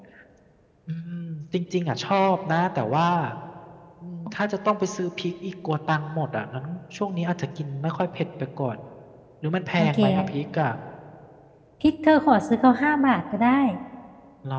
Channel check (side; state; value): both; identical; correlation 1.00